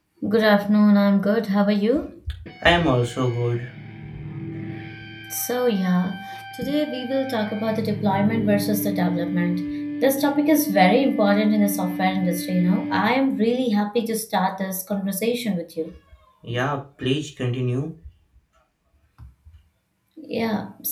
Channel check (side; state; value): both; identical; correlation 1.00